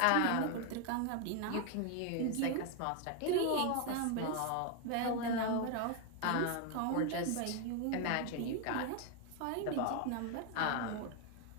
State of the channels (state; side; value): different; both; correlation 0.01